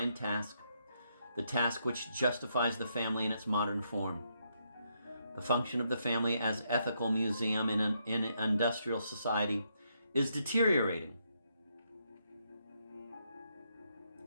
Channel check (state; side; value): inverted; both; correlation -0.77